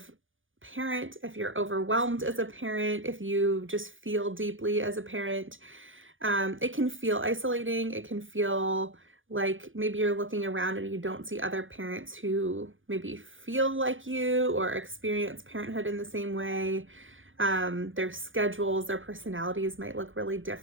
parent, if you're overwhelmed as a parent, if you just feel deeply as a parent. It can feel isolating. It can feel like maybe you're looking around and you don't see other parents who maybe feel like you or experience parenthood in the same way. Their schedules, their personalities might look really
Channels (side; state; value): left; late; 0.58 ms